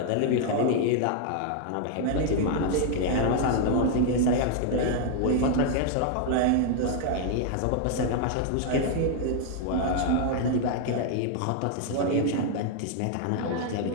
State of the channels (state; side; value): different; both; correlation 0.00